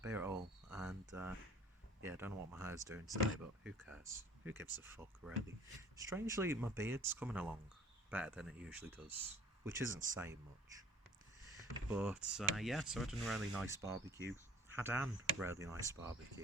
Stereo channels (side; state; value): both; normal; correlation 0.50